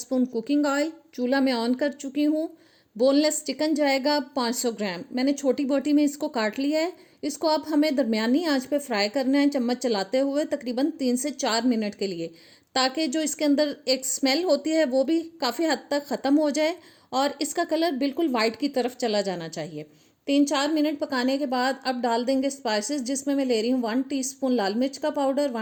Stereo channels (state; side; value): identical; both; correlation 1.00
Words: कुकिंग ऑयल। चूल्हा मैं ऑन कर चुकी हूँ। बोनलेस चिकन जाएगा 500 ग्राम। मैंने छोटी बोटी में इसको काट लिया है। इसको अब हमें दरमियानी आंच पे फ्राई करना है, चम्मच चलाते हुए तकरीबन 3 से 4 मिनट के लिए, ताकि जो इसके अंदर एक स्मेल होती है वो भी काफ़ी हद तक ख़त्म हो जाए और इसका कलर बिल्कुल वाइट की तरफ चला जाना चाहिए। 3-4 मिनट पकाने के बाद अब डाल देंगे स्पाइसेस, जिसमें मैं ले रही हूँ 1 टीस्पून लाल मिर्च का पाउडर,